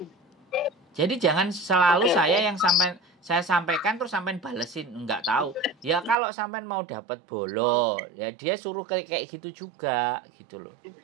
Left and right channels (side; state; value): left; drops out; at 6.2 s